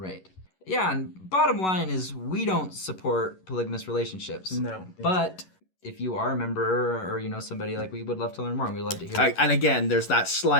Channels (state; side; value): late; right; 11 ms